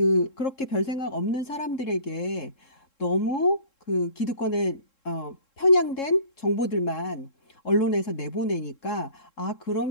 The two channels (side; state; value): right; late; 3.7 ms